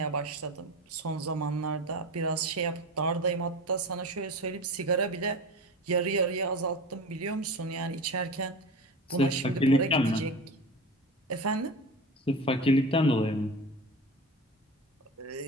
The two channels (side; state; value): both; normal; correlation 0.29